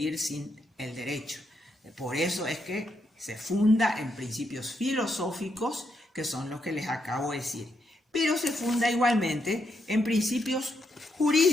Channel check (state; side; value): normal; both; correlation 0.79